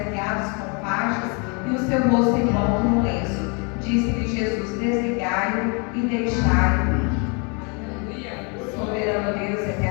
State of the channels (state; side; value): quieter; right; 34.0 dB